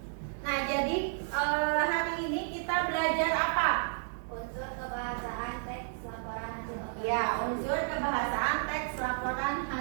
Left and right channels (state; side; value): silent; left; digital silence